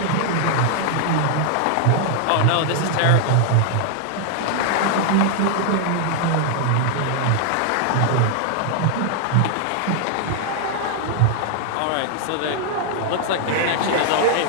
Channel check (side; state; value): both; different; correlation 0.00